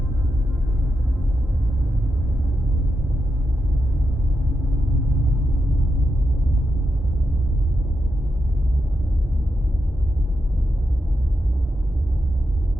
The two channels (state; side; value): normal; both; correlation 0.86